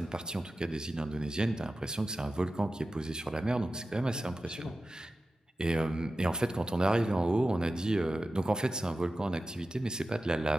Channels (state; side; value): normal; both; correlation 0.94